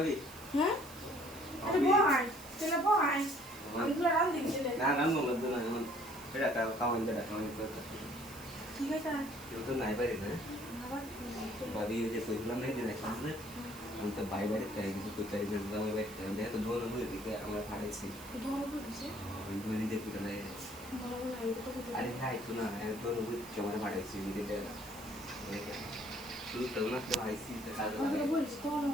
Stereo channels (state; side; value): noise; right; hiss, 16 dB below the sound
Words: হ্যাঁ এটা বহাই তেলা বহাই আমরা রান দিছিলে না না মত না এখন এটা কামান করতে ঠিক আছে কেউ তো নাই পারি না আবার ভাবি যে কইলাম নাই দিন আসলে আমি তো বাই বাড়ি তাই কিছু করতে পারি না আমি বাড়ি তাই তো দোনো হয়ে দিকে আমরা ফাড়াইছি ধরো বুঝছে আমি বলি যে পুরো নাই বলো না এটা তো কত আরে খাই তো না দোনো হয়ে কেমন ফাড়াইছি দিকে শুধু তো না তো আইসি তো কাজ আমরা বলছি তো